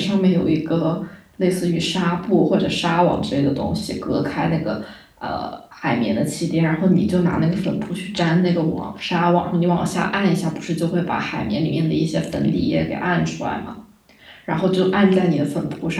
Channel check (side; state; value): both; identical; correlation 1.00